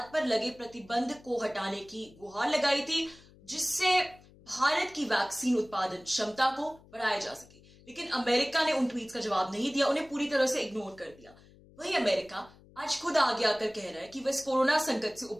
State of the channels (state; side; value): noise; left; hum, 25 dB below the sound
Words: पर लगे प्रतिबंध को हटाने की गुहार लगाई थी, जिससे भारत की वैक्सीन उत्पादन क्षमता को बढ़ाया जा सके। लेकिन अमेरिका ने उन ट्वीट्स का जवाब नहीं दिया, उन्हें पूरी तरह से इग्नोर कर दिया। वहीं अमेरिका आज खुद आगे आकर कह रहा है कि वह इस कोरोना संकट से